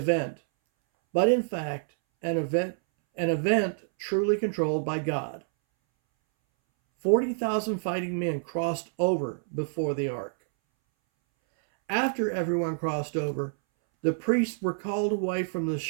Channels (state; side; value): silent; left; 60 dB below the other